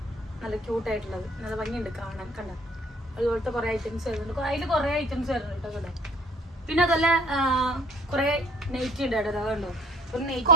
നല്ല ക്യൂട്ടായിട്ടുള്ളത്, നല്ല ഭംഗിയുണ്ട് കാണാൻ. കണ്ട അതുപോലത്തെ കുറെ ഐറ്റംസ് വരുന്നുണ്ട്, അതിൽ കുറെ ഐറ്റംസ് വരുന്നുണ്ട് കേട്ടോ ഇവിടെ. പിന്നെ അതല്ല കുറെ നൈറ്റി ഉണ്ട് കേട്ടോ, അതുണ്ടോ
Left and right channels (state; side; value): normal; both; correlation 0.53